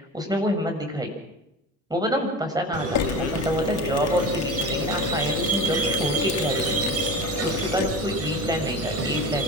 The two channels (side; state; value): both; normal; correlation 0.32